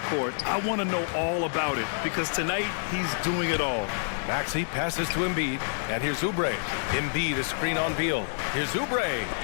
court, I want to know all about it, because tonight he's doing it all. Maxey passes to Embiid, and here's Oubre. Embiid, a screen on Beal. Here's Oubre.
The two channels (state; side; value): silent; right; digital silence